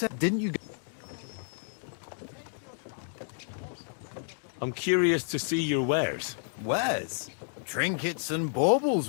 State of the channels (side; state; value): right; silent; digital silence